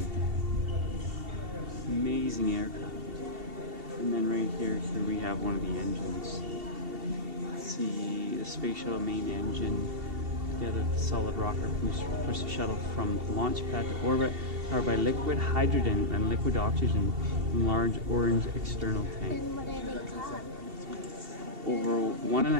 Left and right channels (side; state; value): left; late; 2.7 ms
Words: aircraft. And then right here we have one of the engines. Let's see the space shuttle main engine together with the solid rocket push the shuttle from launch pad to orbit, powered by liquid hydrogen and liquid oxygen in large orange external tank. And what are they called? Over